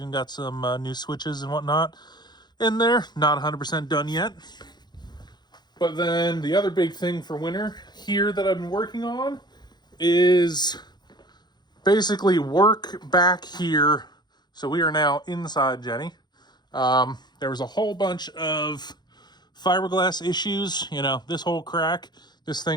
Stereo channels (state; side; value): late; right; 0.21 ms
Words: got some new switches and whatnot in there. Not 100% done yet. But then the other big thing for winter here that I've been working on is basically work back here. So we are now inside Jenny. There was a whole bunch of fiberglass issues. You know, this whole crack, this